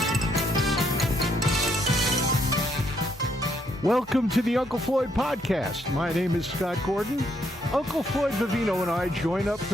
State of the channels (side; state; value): both; normal; correlation 0.73